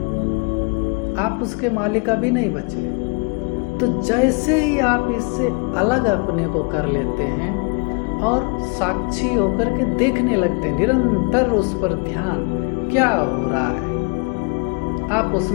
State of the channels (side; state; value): right; quieter; 33.4 dB